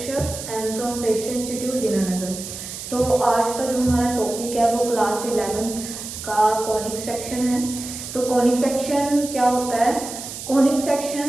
and from प्रेक्षण इंस्टीट्यूट दीनानगर। तो आज का जो हमारा टॉपिक है वो क्लास 11th का कॉनिक सेक्शन है। तो कॉनिक सेक्शन क्या होता है? कॉनिक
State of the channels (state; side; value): noise; right; hiss, 9 dB below the sound